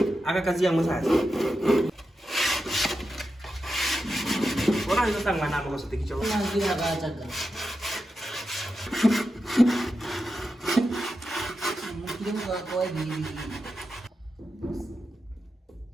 Aga kazi yang sasa. Orang itu tangga nama kau setik cowok. Lagi agak jaga. Mungkin kau ini.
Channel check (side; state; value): both; normal; correlation 0.89